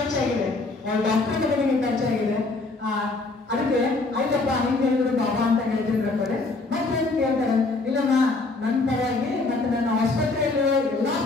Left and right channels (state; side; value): quieter; right; 3.5 dB